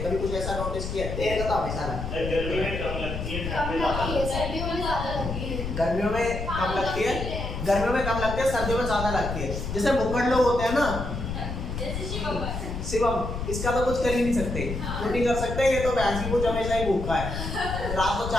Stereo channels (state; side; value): noise; left; rumble, 5 dB below the sound